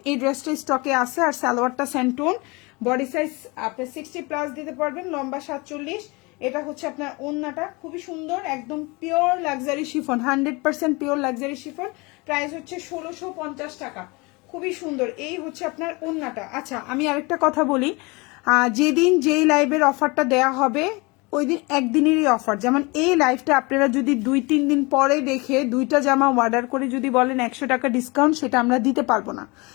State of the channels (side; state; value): right; quieter; 26.3 dB